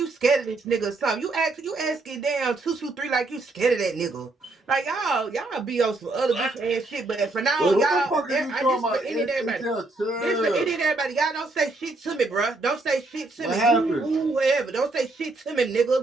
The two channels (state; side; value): quieter; left; 3.2 dB